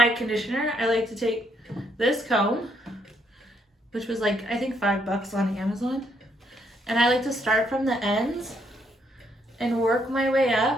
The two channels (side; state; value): both; normal; correlation 0.73